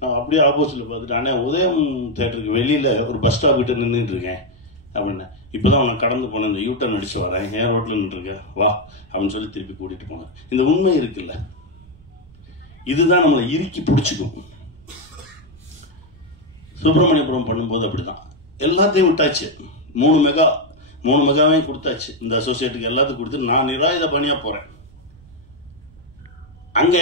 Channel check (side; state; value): right; noise; rumble, 25 dB below the sound